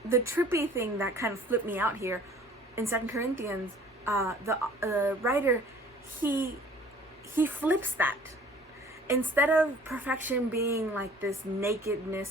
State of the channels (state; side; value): normal; both; correlation 0.51